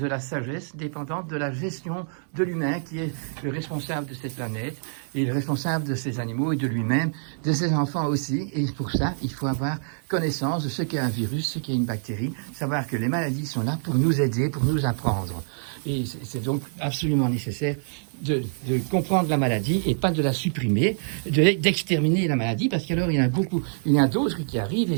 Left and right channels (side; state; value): left; silent; digital silence